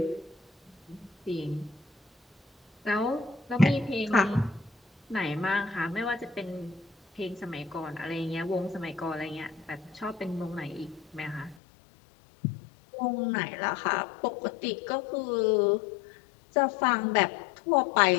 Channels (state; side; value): drops out; right; at 11.6 s